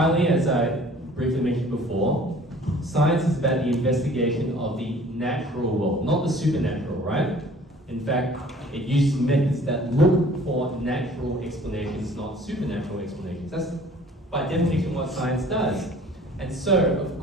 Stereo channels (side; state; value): both; normal; correlation 0.51